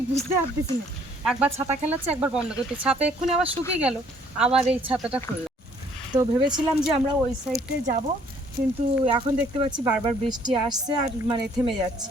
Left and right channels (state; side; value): normal; both; correlation 0.62